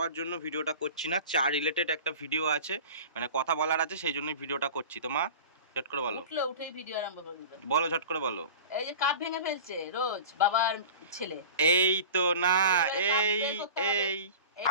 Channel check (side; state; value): both; inverted; correlation -0.37